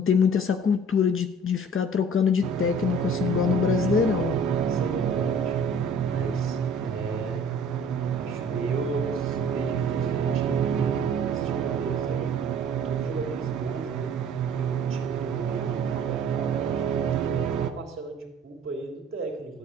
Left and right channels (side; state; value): both; normal; correlation 0.49